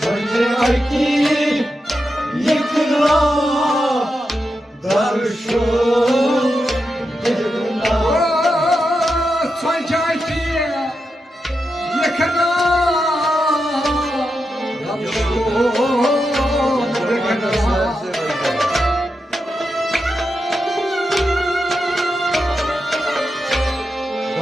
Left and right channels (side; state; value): both; normal; correlation 0.88